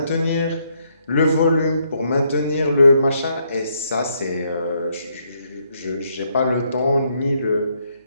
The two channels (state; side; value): inverted; both; correlation -0.74